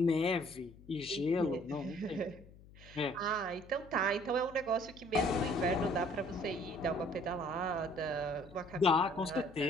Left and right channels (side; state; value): left; noise; hum, 21 dB below the sound